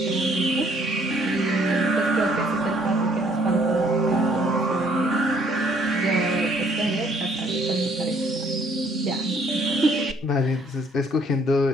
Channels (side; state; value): both; normal; correlation 0.63